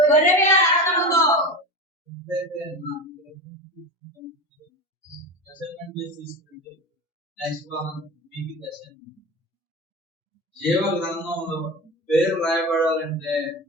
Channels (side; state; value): both; normal; correlation 0.26